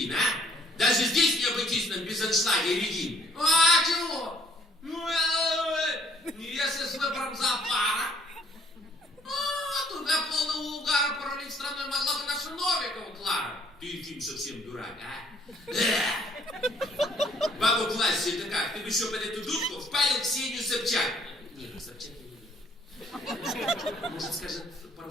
а? Даже здесь не обойтись нам без аншлага и Регин. А чего? Если с выбором зоопара, туда полного угара паралич страной могла бы наша Новикова Клара. Ты, Ефим, совсем дурак, а? Бабу классе это как? Ты бы еще под эту дудку впалил Ксению Собчак. Нет, Собчак я не люблю. Может, скажет пару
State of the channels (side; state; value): both; normal; correlation 0.62